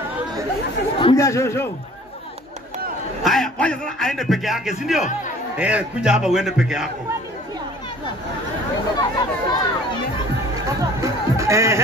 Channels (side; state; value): both; normal; correlation 0.50